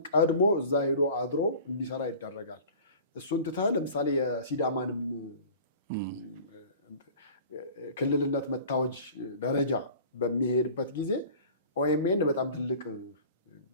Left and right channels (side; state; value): both; inverted; correlation -0.43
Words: ቀድሞ እዛ ሄዶ አድሮ እንዲሰራ ይደረጋል። እሱን ትተህ ለምሳሌ የሲዳማንም ክልልነት መታወጅ ደረጃ በሚሄድበት ጊዜ ኦኤምኤን በጣም ትልቅ